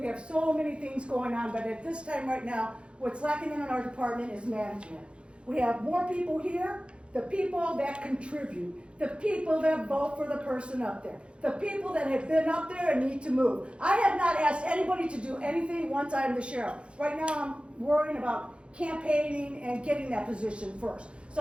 have so many things going on, but at this time right now, what's lacking in our department is management. We have more people here, the people that contribute, the people that vote for the person up there, the people that have been up there and need to move. I have not asked anybody to do anything once I'm the sheriff. Right now I'm worrying about campaigning and getting that position first.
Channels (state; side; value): late; left; 0.058 ms